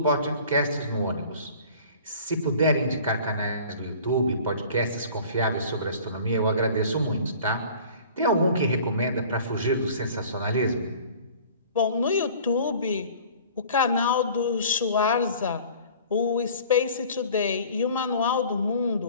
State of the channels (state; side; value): inverted; both; correlation -0.47